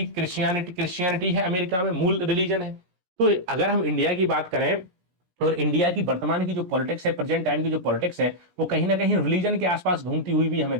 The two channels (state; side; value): late; left; 17 ms